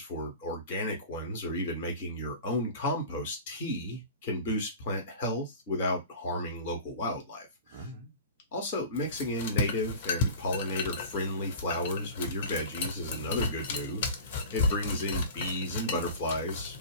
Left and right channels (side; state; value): both; inverted; correlation -0.36